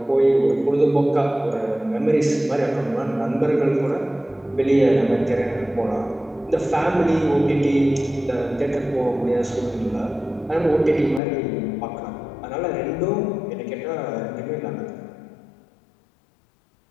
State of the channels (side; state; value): right; drops out; at 11.2 s